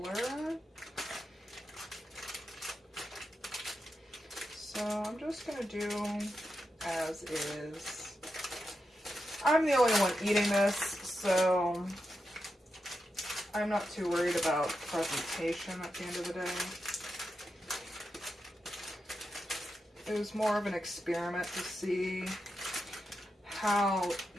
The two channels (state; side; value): normal; both; correlation 0.88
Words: So I'm just gonna do as is. I'm the only one eating this, so I'm not too worried about presentation at the end of the day. It was more of an experiment to see how